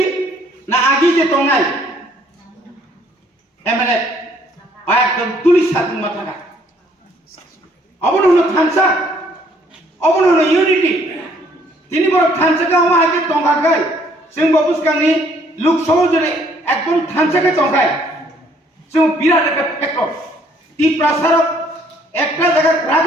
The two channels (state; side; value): normal; both; correlation 0.63